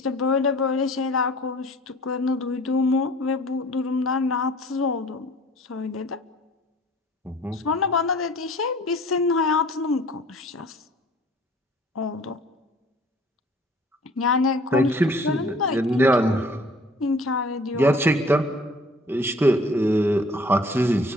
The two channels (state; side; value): normal; both; correlation 0.51